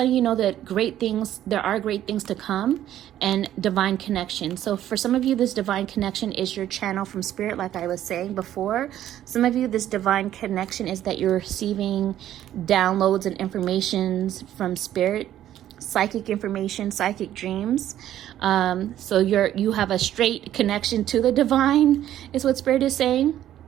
you know that there are great things to come, and divine connection. So for some of you, this divine connection is your channel from Spirit, like I was saying before. Some of you, this divine connection is that you're receiving downloads and informations from Spirit, psychic information, psychic dreams. So you have a straight connection to the divine, is what Spirit is saying.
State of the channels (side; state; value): left; quieter; 12.0 dB